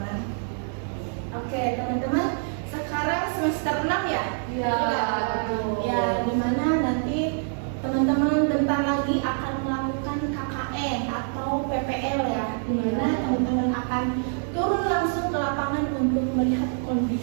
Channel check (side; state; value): left; silent; 59 dB below the other